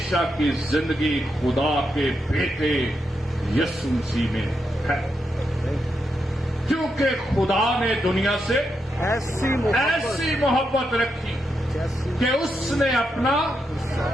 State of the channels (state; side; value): normal; both; correlation 0.83